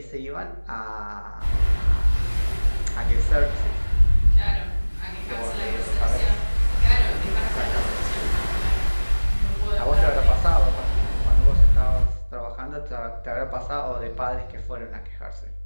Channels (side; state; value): both; inverted; correlation -1.00